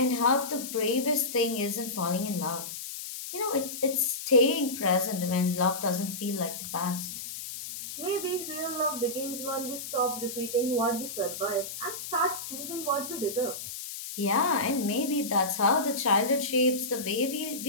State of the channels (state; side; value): noise; left; hiss, 8 dB below the sound